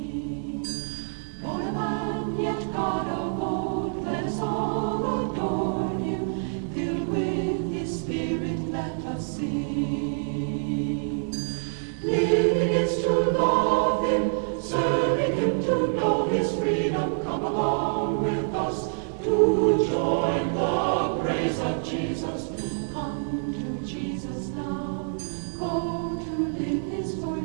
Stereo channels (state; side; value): silent; left; 61 dB below the other